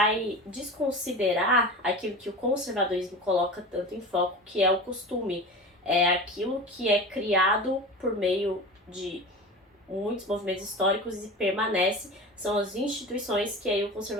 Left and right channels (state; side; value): normal; both; correlation 0.31